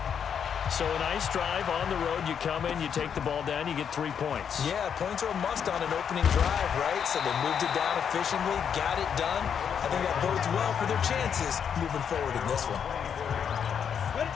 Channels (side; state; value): right; quieter; 7.7 dB